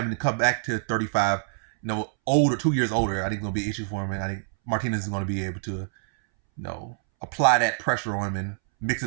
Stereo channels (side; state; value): left; silent; 61 dB below the other